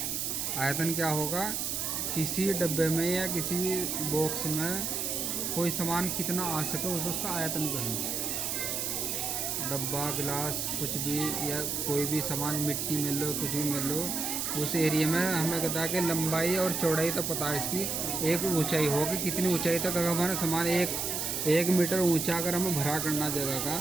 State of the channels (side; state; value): right; noise; hiss, 1 dB below the sound